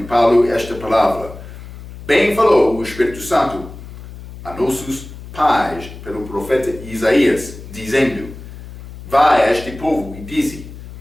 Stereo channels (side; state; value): left; noise; hum, 14 dB below the sound